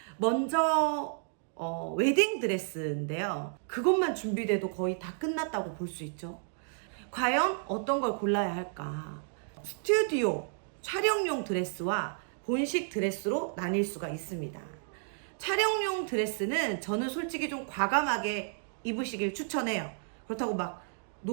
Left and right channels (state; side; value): silent; left; digital silence